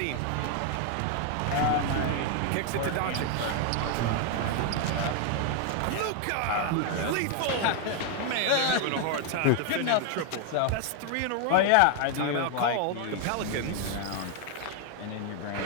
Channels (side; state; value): both; different; correlation 0.00